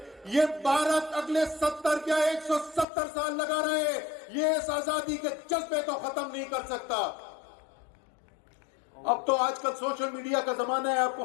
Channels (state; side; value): drops out; right; at 2.9 s